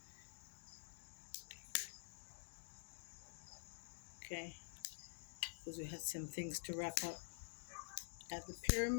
okay? Because we had some things to wrap up at the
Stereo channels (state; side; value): silent; right; digital silence